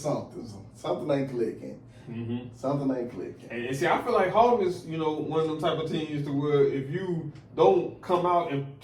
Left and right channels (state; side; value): identical; both; correlation 1.00